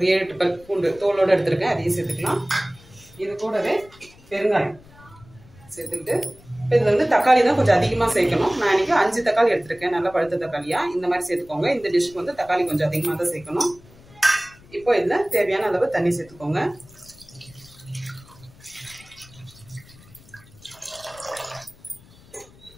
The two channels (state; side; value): noise; left; rumble, 24 dB below the sound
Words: 7-8 பல் பூண்டு தோலோடு எடுத்திருக்கேன். அதையும் சேர்த்துக்கலாம். இது கூடவே பெருங்காயம் சேர்த்துக்கிட்டு இப்போ இதில் வந்து தக்காளி தான் கொஞ்சம் அதிகமாக சேர்க்கணும். நான் இன்னைக்கு 5 தக்காளி எடுத்திருக்கேன். நல்லா பழுத்த தக்காளியா இந்த மாதிரி சேர்த்துக்கோங்க. இந்த டிஷ்க்கு வந்து தக்காளி கொஞ்சம் அதிகமாக தான் சேர்க்கணும். இப்போ இதில் தேவையான அளவு தண்ணி சேர்த்துக்கோங்க.